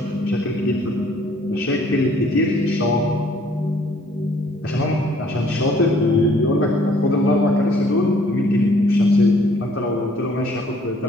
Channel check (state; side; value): normal; both; correlation 0.60